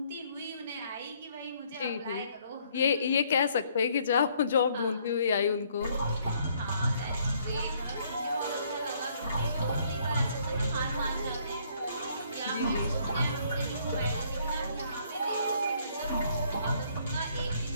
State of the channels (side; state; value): both; inverted; correlation -0.65